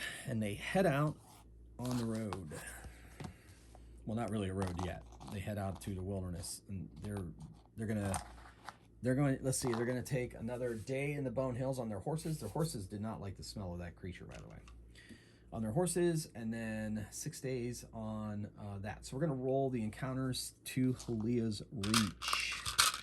and they head out on the road. Well, not really a road yet. They head out to the wilderness, and they're going. Let's see. They're going to take another day in the Bone Hills on their horses. Their horses did not like the smell of that creature, by the way. On their horses, and then 6 days on that. So we're going to roll the encounters to Halia's Reach.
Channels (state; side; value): identical; both; correlation 1.00